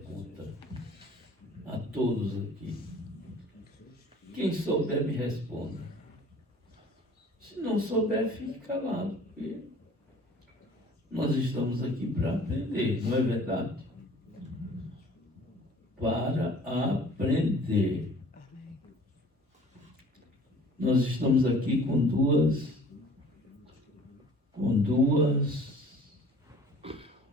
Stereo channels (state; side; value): normal; both; correlation 0.49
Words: a todos aqui. Quem souber, me responda. Se não souber, fique calado, porque nós estamos aqui para aprender, não é verdade? Para aprender. Nós estamos aqui com duas